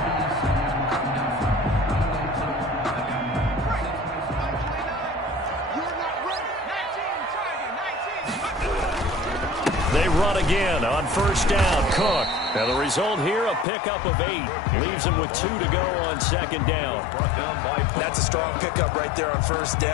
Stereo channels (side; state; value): right; drops out; at 13.7 s